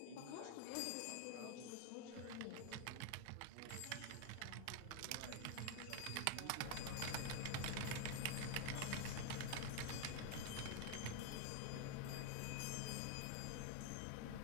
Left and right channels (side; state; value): both; different; correlation 0.01